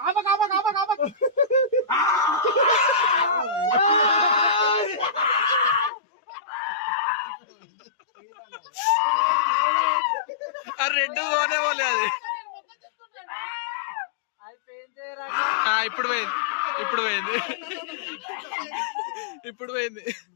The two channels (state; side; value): drops out; right; at 5.9 s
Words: రెడ్ పోనే పోలే అది ఇప్పుడు పోయింది ఇప్పుడు పోయింది ఇప్పుడు పోయింది